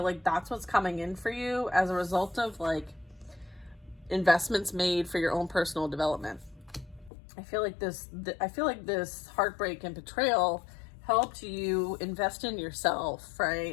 like that's what's coming in for you as a result of like investments made for your own personal development. I feel like this heartbreak and betrayal helped you invest in yourself,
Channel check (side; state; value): right; drops out; at 7.1 s